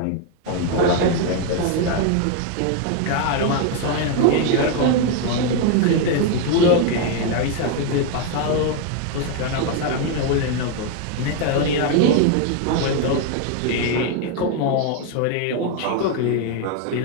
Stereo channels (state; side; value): different; both; correlation 0.01